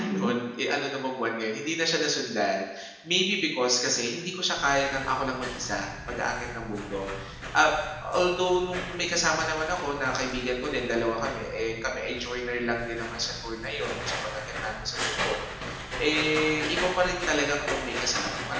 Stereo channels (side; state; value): both; identical; correlation 1.00